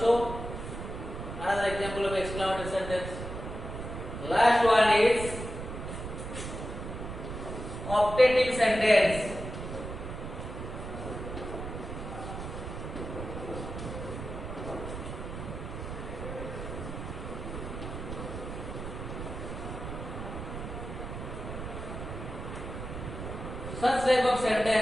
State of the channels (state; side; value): noise; right; rumble, 7 dB below the sound